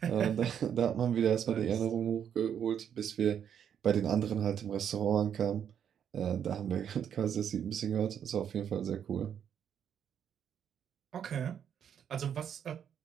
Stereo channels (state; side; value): quieter; left; 8.6 dB